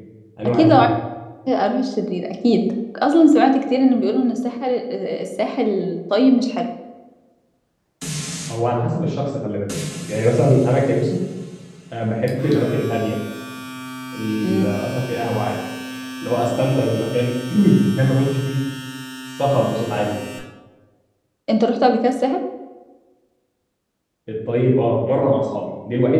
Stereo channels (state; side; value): identical; both; correlation 1.00